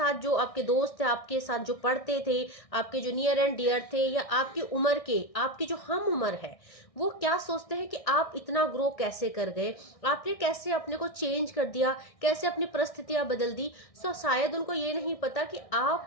जो आपके दोस्त थे, आपके साथ जो पढ़ते थे, आपके जो नियर एंड डियर थे, या आपकी उम्र के, आपकी जो हम उम्र है, वो क्या सोचते हैं कि आप इतना ग्रो कैसे कर गए, आपने कैसे अपने को चेंज कर दिया, कैसे अपनी परिस्थितियां बदल दी। सो शायद उनको ये नहीं पता कि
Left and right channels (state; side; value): late; right; 1.6 ms